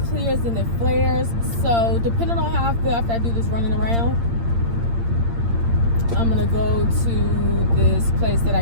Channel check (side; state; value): left; late; 8.7 ms